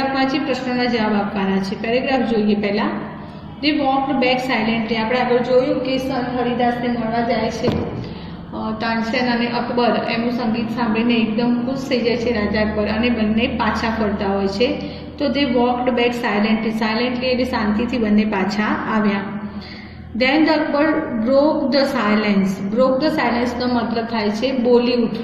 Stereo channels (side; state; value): both; identical; correlation 1.00